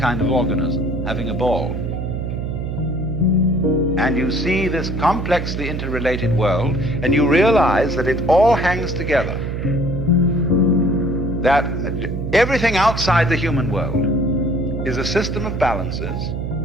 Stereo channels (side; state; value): right; noise; hum, 4 dB below the sound